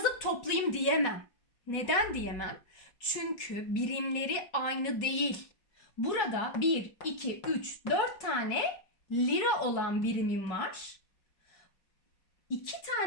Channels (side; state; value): right; late; 4.3 ms